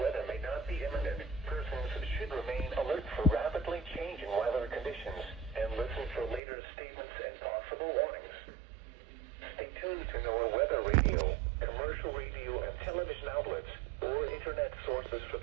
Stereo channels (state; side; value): drops out; left; at 6.4 s